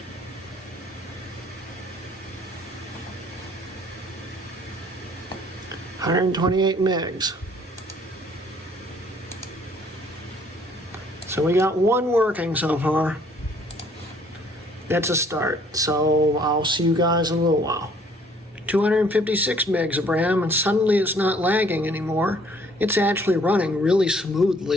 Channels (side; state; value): both; normal; correlation 0.60